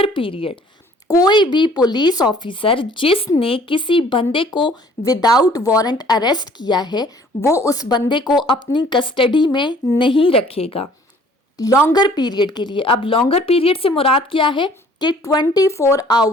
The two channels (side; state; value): both; normal; correlation 0.55